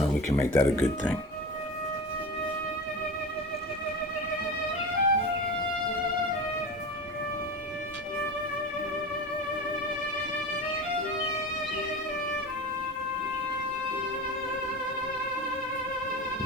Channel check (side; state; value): both; normal; correlation 0.28